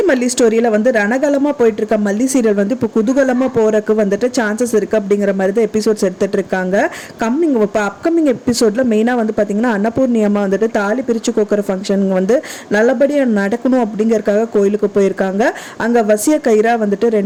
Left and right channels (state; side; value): identical; both; correlation 1.00